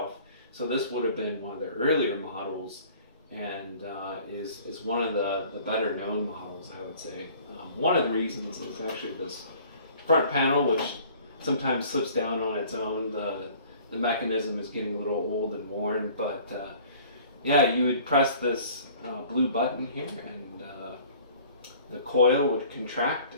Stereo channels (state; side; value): inverted; both; correlation -0.51